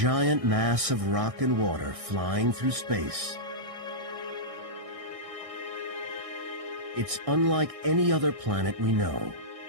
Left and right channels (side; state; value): left; late; 1.6 ms